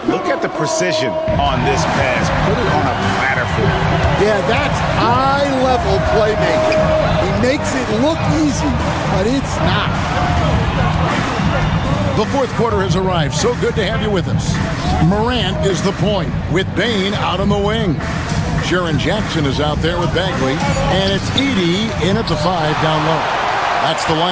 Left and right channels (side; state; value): both; identical; correlation 1.00